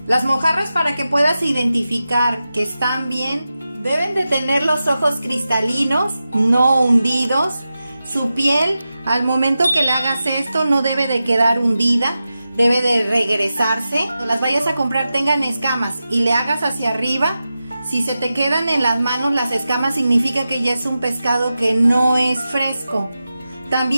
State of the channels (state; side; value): inverted; both; correlation -0.92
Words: Las mojarras, para que puedas identificar que están bien, deben de tener los ojos cristalinos, no hundidos. Su piel, al momento que le hagas esto, no debe de quedar hundida, debe de regresarse. Cuando las vayas a comprar tengan escamas y le hagas hacia arriba. Si se te quedan en las manos las escamas, significa que ya es un pescado que no es fresco.